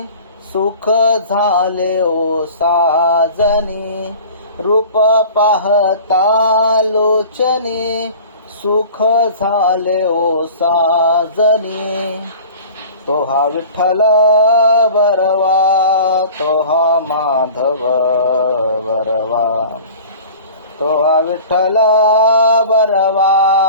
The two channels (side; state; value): both; inverted; correlation -0.42